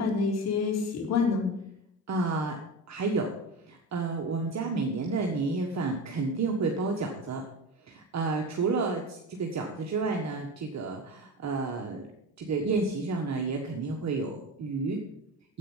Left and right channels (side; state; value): both; normal; correlation 0.26